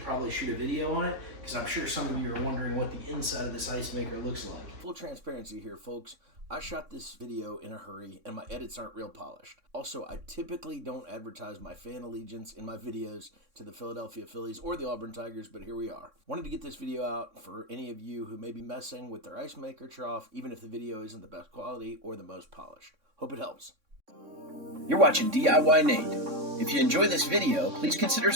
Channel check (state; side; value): late; left; 3.6 ms